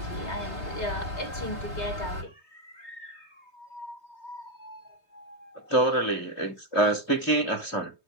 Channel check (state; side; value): late; right; 3.2 ms